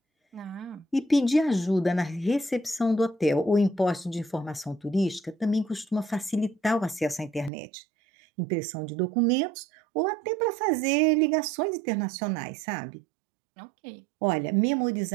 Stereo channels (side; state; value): left; drops out; at 7.5 s